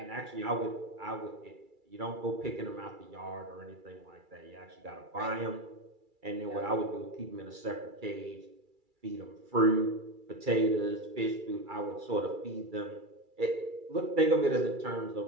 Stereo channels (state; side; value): late; left; 2.3 ms